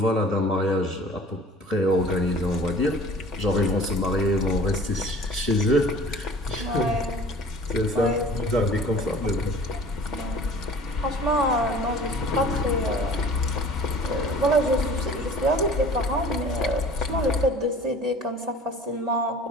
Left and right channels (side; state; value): both; normal; correlation 0.46